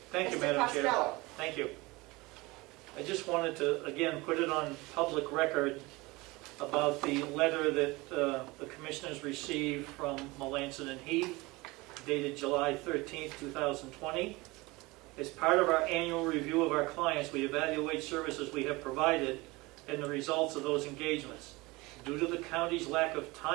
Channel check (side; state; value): left; quieter; 22.8 dB